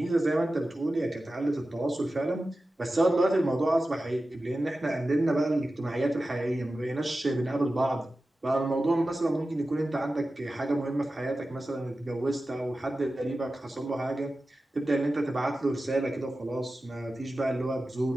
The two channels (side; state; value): both; normal; correlation 0.94